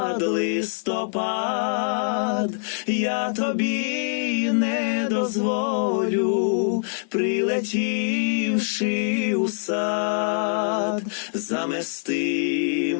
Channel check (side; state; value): right; silent; digital silence